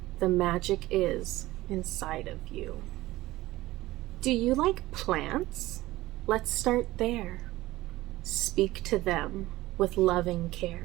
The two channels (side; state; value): left; quieter; 17.5 dB